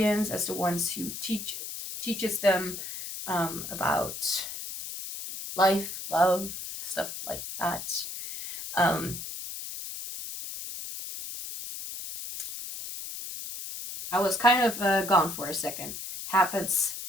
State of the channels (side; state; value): left; noise; hiss, 8 dB below the sound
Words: as the ones who teaches them about life, love, stuff like that. I was kind of gone for a second. Happens